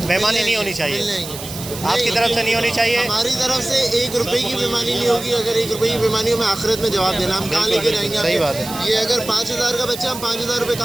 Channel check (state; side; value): noise; right; hiss, 11 dB below the sound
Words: बेईमानी नहीं होनी चाहिए, आपकी तरफ से नहीं होनी चाहिए। हमारी तरफ से 1 रुपए की बेईमानी नहीं होगी। अगर 1 रुपए की बेईमानी हो, मैं आखिरत में जवाब देना, हम कहाँ लेके रहेंगे? सही बात है। ये अगर 5,000 का बच्चा, हम 5,000 रुपये